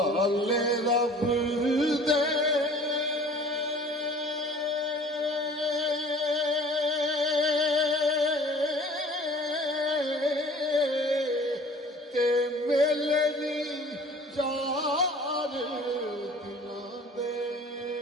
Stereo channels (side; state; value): both; normal; correlation 0.48